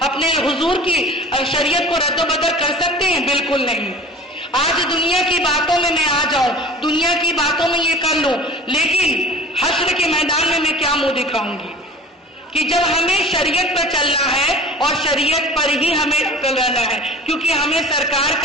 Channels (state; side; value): normal; both; correlation 0.40